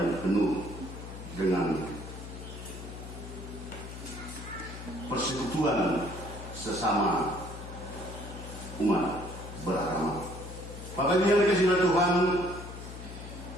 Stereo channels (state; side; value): noise; left; hum, 11 dB below the sound